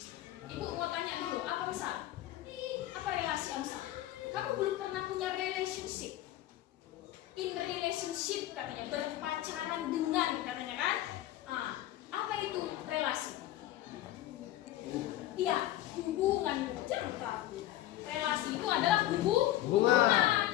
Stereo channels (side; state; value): right; quieter; 14.4 dB